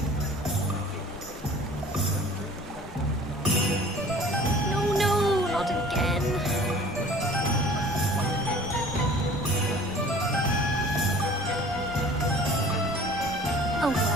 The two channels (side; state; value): both; normal; correlation 0.47